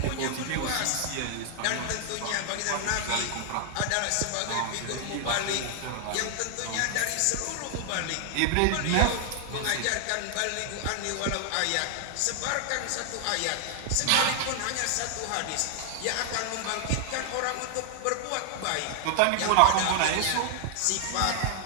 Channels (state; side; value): different; both; correlation 0.00